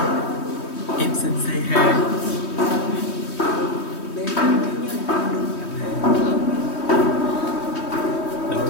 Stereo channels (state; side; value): late; right; 3.2 ms